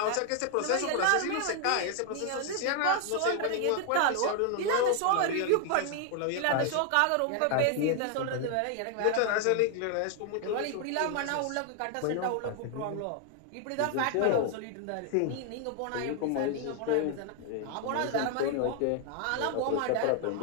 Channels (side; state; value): both; different; correlation 0.00